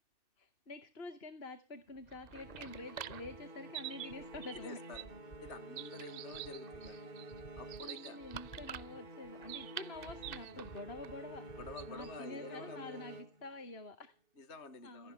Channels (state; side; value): late; right; 2.6 ms